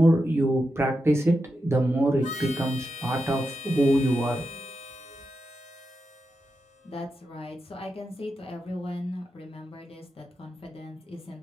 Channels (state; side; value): normal; both; correlation 0.88